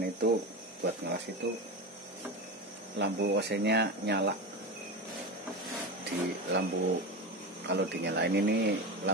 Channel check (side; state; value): both; normal; correlation 0.22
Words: itu buat ngelas itu lampu OC-nya nyala. Di lampu kalau dinyalain ini